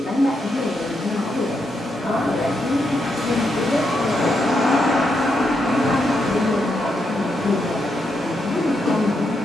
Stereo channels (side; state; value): both; normal; correlation 0.81